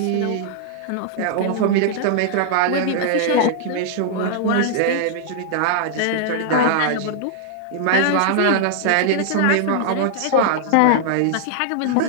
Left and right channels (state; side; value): different; both; correlation -0.01